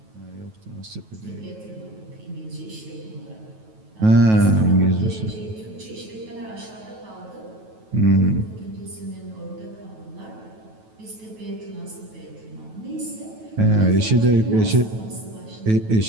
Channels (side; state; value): left; late; 9.2 ms